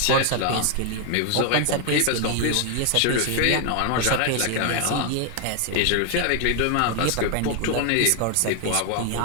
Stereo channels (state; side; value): different; both; correlation 0.00